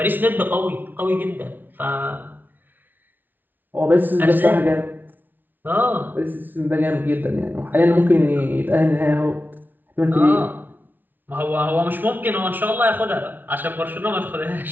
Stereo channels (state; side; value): late; left; 0.087 ms